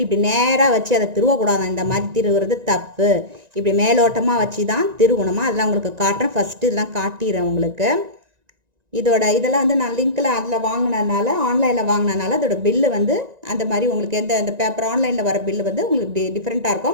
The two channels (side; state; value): left; late; 1.9 ms